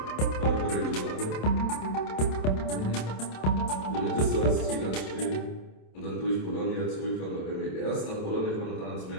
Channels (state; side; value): late; right; 27 ms